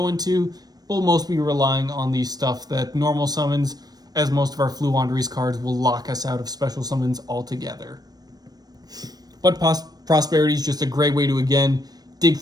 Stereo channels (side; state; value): left; late; 0.19 ms